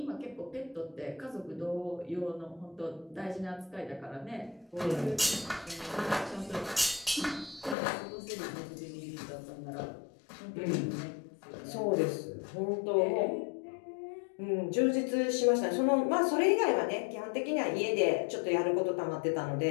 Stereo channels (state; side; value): drops out; right; at 7.8 s